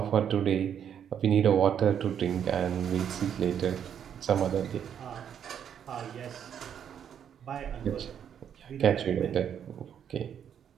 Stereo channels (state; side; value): quieter; left; 8.7 dB